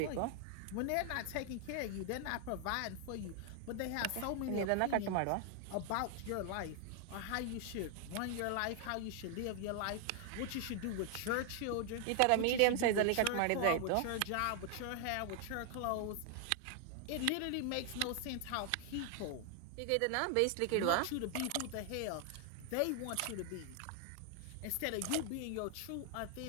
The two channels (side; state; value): both; different; correlation 0.00